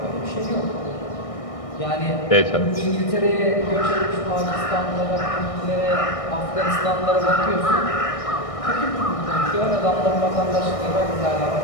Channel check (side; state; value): right; late; 1.6 ms